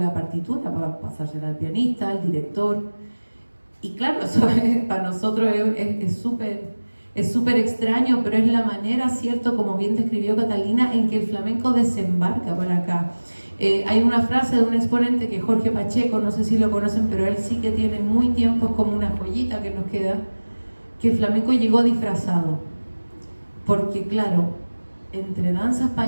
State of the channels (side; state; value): both; inverted; correlation -1.00